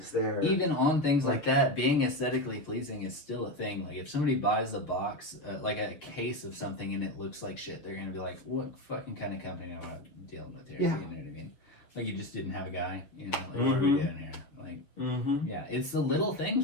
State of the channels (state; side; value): late; right; 7.0 ms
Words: there, even on things like that, being aesthetically pleasing is still a thing. Like, if somebody buys a box, like a case of something, and it looks like shit, they're gonna be like, "What fucking kind of company am I dealing with here?" Yeah. You know what I mean? Like, you just didn't have a guy. You know, like, what are we doing here? Like, yeah, it's the little things